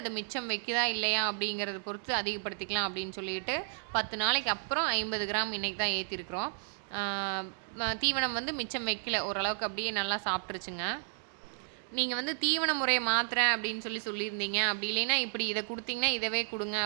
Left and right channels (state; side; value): silent; left; digital silence